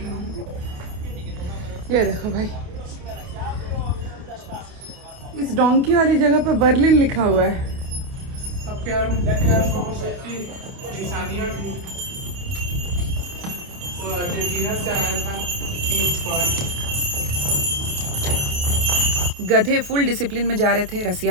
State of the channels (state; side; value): late; left; 28 ms